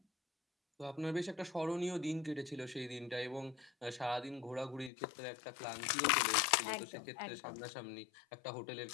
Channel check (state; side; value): drops out; right; at 4.9 s